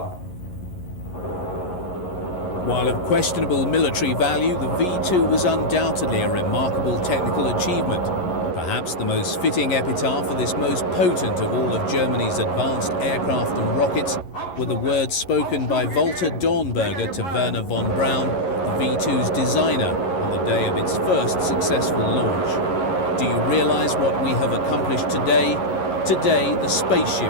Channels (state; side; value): late; right; 11 ms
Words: While of questionable military value, the V2 was undoubtedly a remarkable technical achievement. Perhaps the most fitting epitaph for this most potent of all of Germany's advanced aircraft and rockets were the words spoken by Walter Dornberger to Werner von Braun, the V2's designer, on the day of its first successful launch. Do you realize what we have accomplished today? Today, the